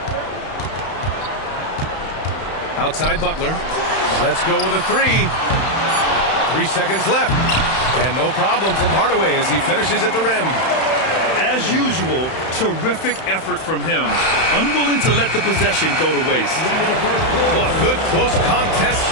Outside Butler. Let's go with a three. 3 seconds left. And no problem from Hardaway as he finishes at the rim. As usual, terrific effort from him. Unwilling to let the possession go to waste. Well, a good close contest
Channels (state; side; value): late; right; 31 ms